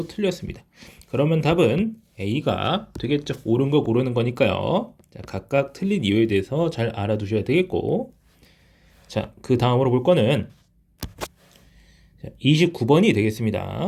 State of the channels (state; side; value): identical; both; correlation 1.00